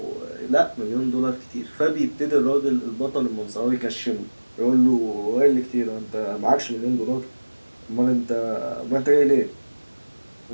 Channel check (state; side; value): inverted; both; correlation -1.00